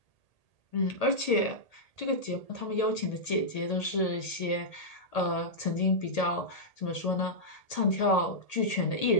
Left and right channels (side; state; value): right; late; 1.8 ms